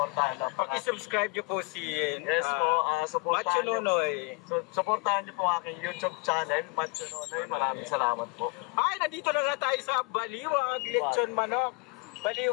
na. Pag-subscribe nyo po si Yes po, supportahan Macho Nunoy. So, supportahan nyo po aking YouTube channel, Macho Nunoy. Maraming salamat po. Ay, nandito na nga tayo sa Baliwag, lechon manok.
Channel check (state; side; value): quieter; right; 29.4 dB